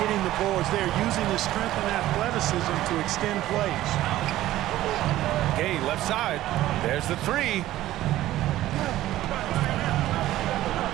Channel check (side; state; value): left; quieter; 14.8 dB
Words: the boards there, using his strength and athleticism to extend plays. Gay left side. There's the three.